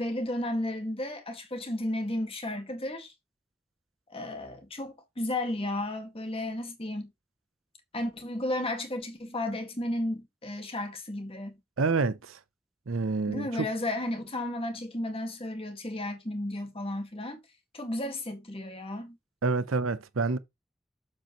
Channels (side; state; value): both; normal; correlation 0.49